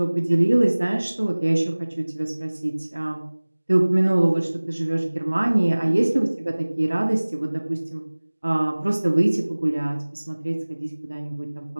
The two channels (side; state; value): both; inverted; correlation -1.00